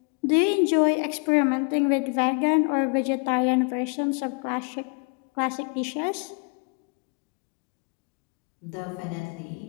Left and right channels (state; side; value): quieter; right; 36.5 dB